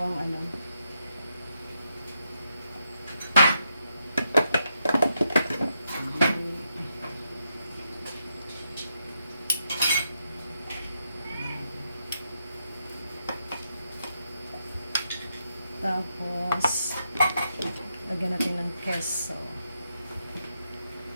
ano. Tapos, lagyan natin ng queso.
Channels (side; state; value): both; inverted; correlation -0.82